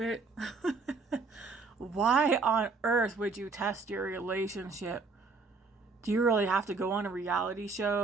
Why on earth would you test your relationship? Do you really have to go on a reality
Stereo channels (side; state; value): left; quieter; 4.3 dB